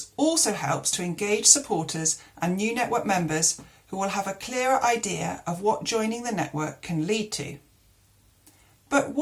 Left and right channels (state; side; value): identical; both; correlation 1.00